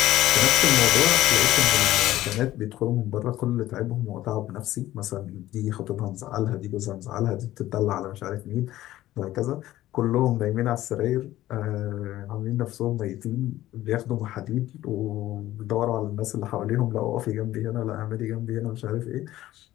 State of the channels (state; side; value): quieter; right; 14.8 dB